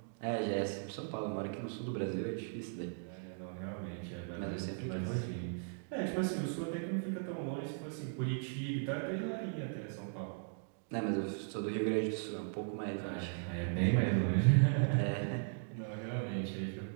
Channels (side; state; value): left; silent; digital silence